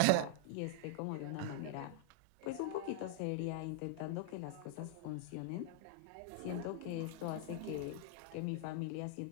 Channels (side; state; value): both; different; correlation -0.01